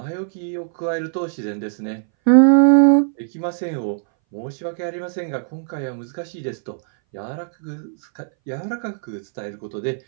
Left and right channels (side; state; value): left; silent; 61 dB below the other